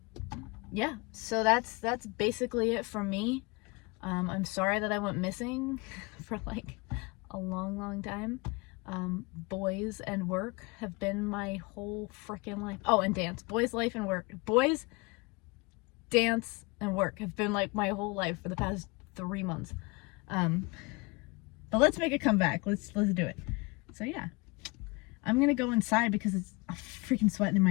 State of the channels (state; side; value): quieter; right; 27.1 dB